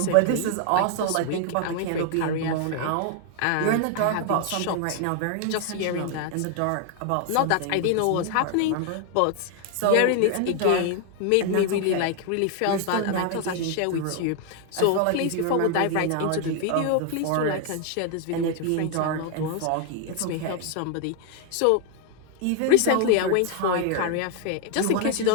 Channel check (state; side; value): different; both; correlation 0.00